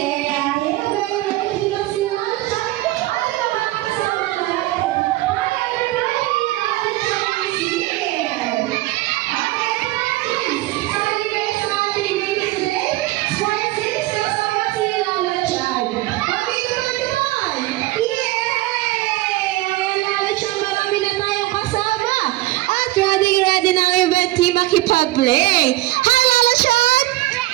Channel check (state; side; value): quieter; left; 18.3 dB